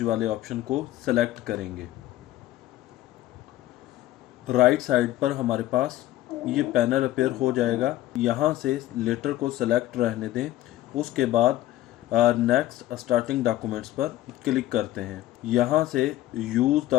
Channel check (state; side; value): quieter; right; 14.6 dB